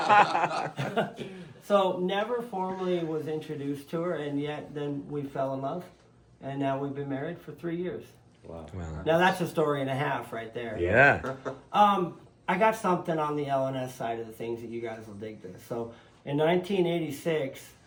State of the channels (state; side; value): identical; both; correlation 1.00